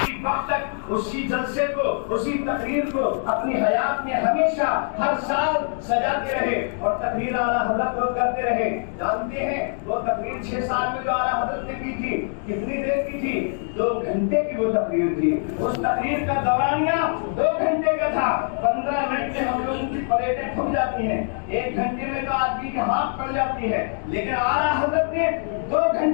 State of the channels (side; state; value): right; silent; 60 dB below the other